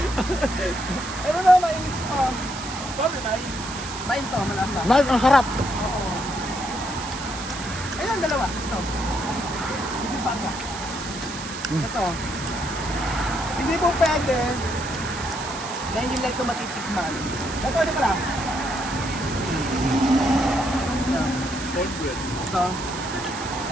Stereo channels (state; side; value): noise; right; hiss, 10 dB below the sound